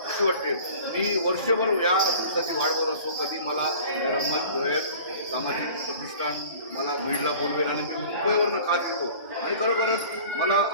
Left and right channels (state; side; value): inverted; both; correlation -0.44